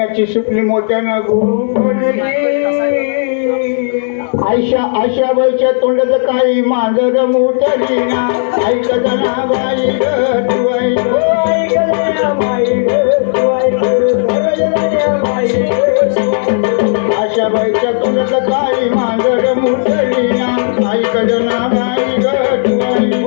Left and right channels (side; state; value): right; silent; digital silence